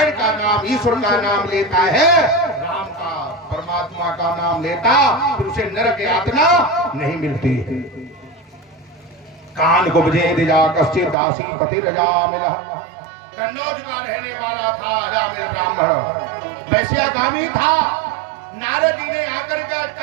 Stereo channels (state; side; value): drops out; left; at 11.2 s